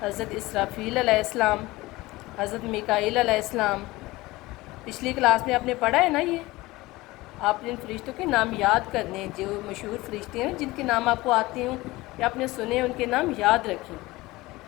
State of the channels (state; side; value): quieter; right; 19.9 dB